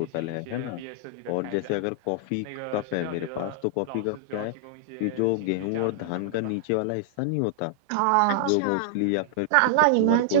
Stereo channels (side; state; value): both; different; correlation -0.01